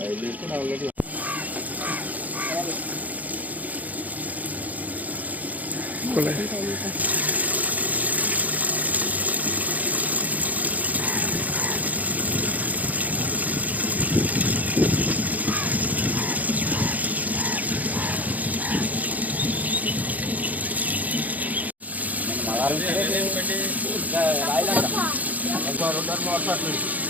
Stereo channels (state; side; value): late; left; 0.078 ms